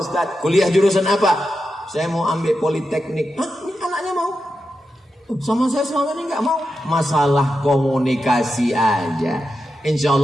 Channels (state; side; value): normal; both; correlation 0.89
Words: Ustadz. Kuliah jurusan apa? Saya mau ambil politeknik. Hah? Ini anaknya mau? Sama saya selama ini nggak mau. Masalah komunikasi aja. Insya